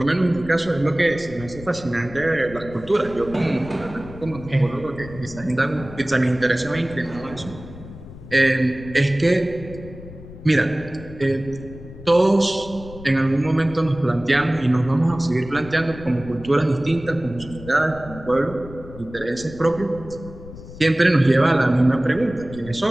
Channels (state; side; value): noise; left; rumble, 15 dB below the sound